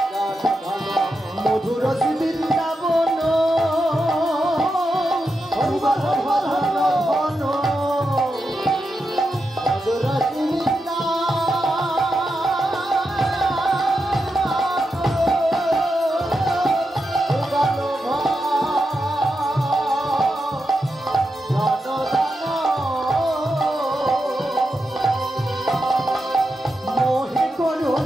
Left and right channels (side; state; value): both; normal; correlation 0.87